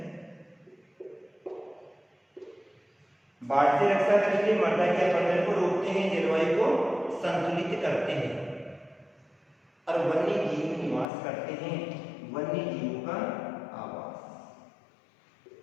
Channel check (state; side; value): drops out; right; at 11.1 s